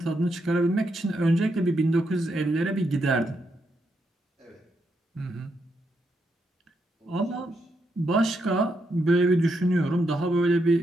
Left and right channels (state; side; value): normal; both; correlation 0.80